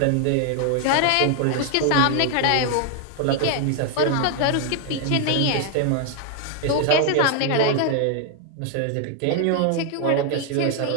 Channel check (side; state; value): both; different; correlation 0.00